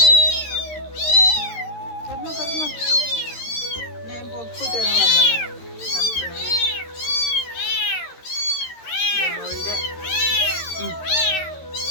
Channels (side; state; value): right; late; 13 ms